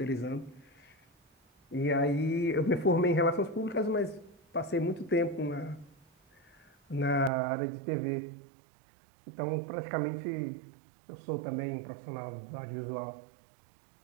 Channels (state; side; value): drops out; left; at 7.3 s